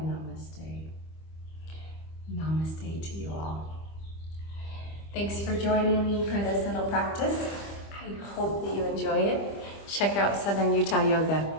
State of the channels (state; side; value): late; right; 25 ms